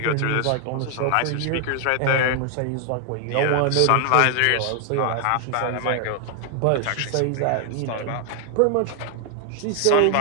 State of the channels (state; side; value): different; both; correlation 0.00